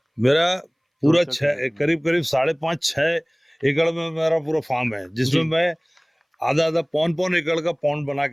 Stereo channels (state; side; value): identical; both; correlation 1.00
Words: मेरा पूरा करीब 5.5-6 एकड़ में मेरा पूरा फार्म है, जिसमें मैं आधा 5 एकड़ का पॉन्ड बना